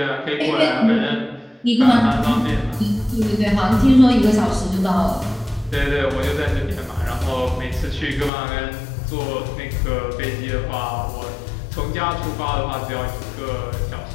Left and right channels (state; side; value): drops out; right; at 8.3 s